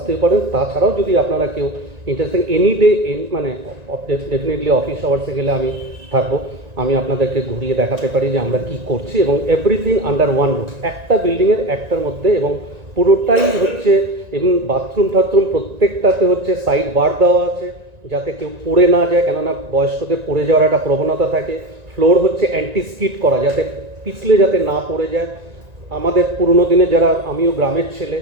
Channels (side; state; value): left; late; 1.9 ms